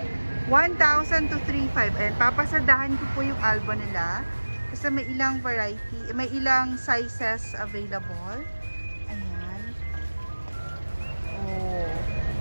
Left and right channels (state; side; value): inverted; both; correlation -1.00